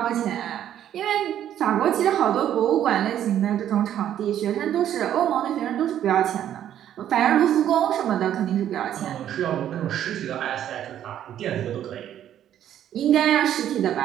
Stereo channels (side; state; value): left; quieter; 10.8 dB